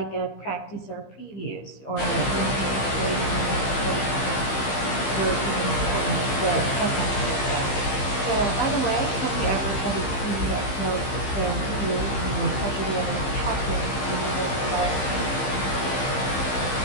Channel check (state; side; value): late; right; 15 ms